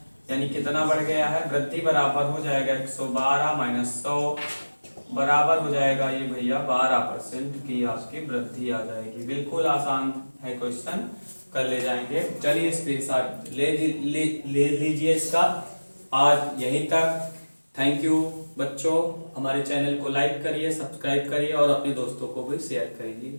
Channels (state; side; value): inverted; both; correlation -1.00